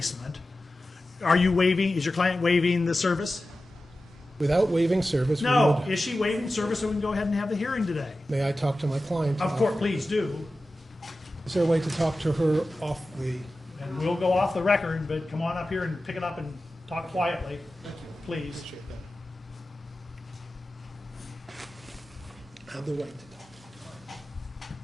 is your client waiving the service? Without waiving service, we No. would, Is she waiving service so we can go ahead and have the hearing today? may I talk to my client? Of course, please do. Is there a way to talk to her off the, And we'll go off the record, but come on up here and pick it up and talk quietly, please. have the right to talk?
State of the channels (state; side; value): normal; both; correlation 0.94